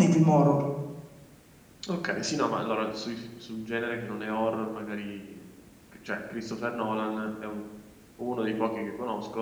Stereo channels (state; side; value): identical; both; correlation 1.00